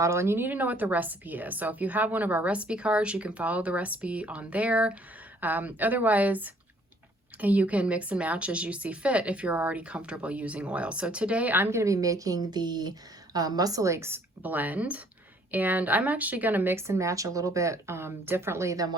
and you need to know what the recipe is. So if you have one of our recipe cards, you can follow the recipe on there. Otherwise, you can mix and match as you see fit if you're already comfortable using oil. So today I'm gonna be making the Muscle Aches blend, and I'm actually gonna mix and match a little bit differently than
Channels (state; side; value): normal; both; correlation 0.61